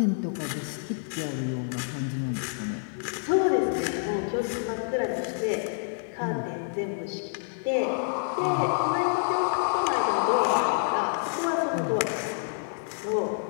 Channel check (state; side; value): silent; right; digital silence